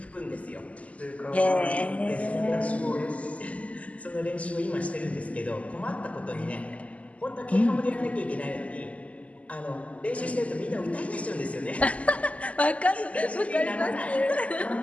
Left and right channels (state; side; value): late; right; 0.067 ms